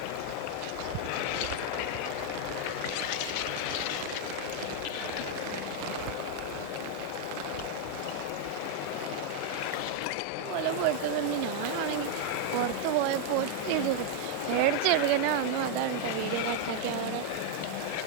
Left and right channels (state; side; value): different; both; correlation 0.00